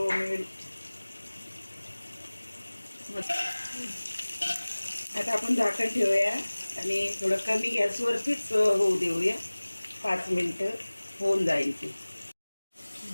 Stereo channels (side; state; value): both; inverted; correlation -1.00